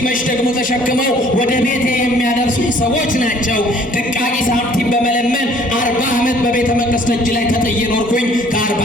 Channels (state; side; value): normal; both; correlation 0.57